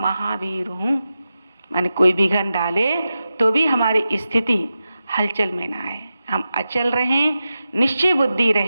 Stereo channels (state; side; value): inverted; both; correlation -0.92